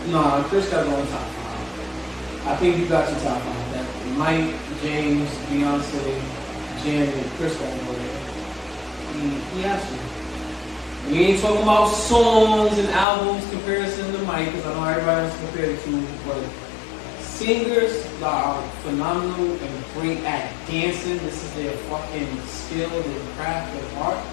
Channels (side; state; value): right; drops out; at 13.1 s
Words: No, Chris got to go in top 5. I think you got your top 5. That Mike, James, Beyonce, Janet, Chris got to go there. He has to. We ain't talking about songs and albums comparison to Mike, because I know everybody wants to compare the two, but singers that are phenomenal and great at dancing, this is their fucking skill, their craft, their art.